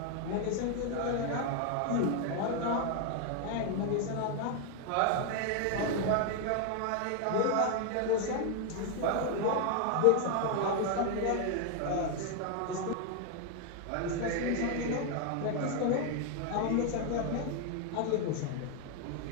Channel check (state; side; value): different; both; correlation 0.00